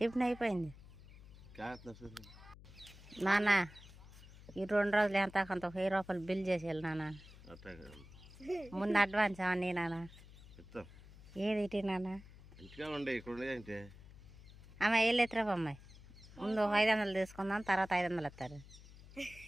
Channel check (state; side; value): noise; left; hum, 19 dB below the sound